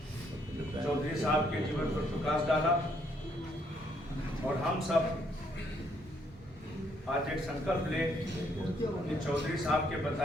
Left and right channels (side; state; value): both; normal; correlation 0.70